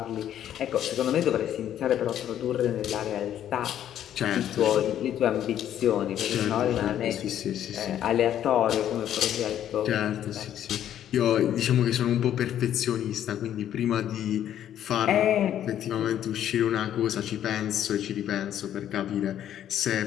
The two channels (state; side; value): quieter; right; 10.8 dB